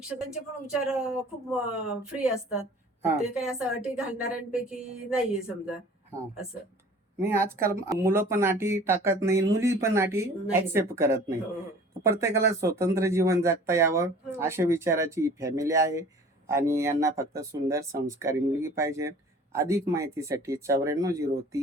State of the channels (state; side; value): normal; both; correlation 0.47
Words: पण विचार खूप फ्री असतात. हा. ते काही असं अटी घालणाऱ्यांपैकी नाहीये समजा हा. असं. नाही, आजकाल मुलं पण अटी टाकत नाही, मुली पण अटी नाही. ऍक्सेप्ट करत नाही. हो, हो. प्रत्येकाला स्वतंत्र जीवन जगता यावं हो. अशा विचाराची फॅमिली आहे आणि यांना फक्त सुंदर संस्कारी मुलगी पाहिजे. अधिक माहितीसाठी